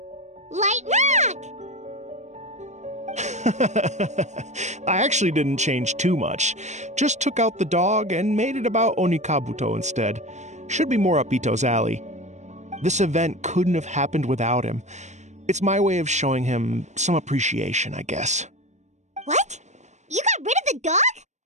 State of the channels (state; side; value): late; left; 0.34 ms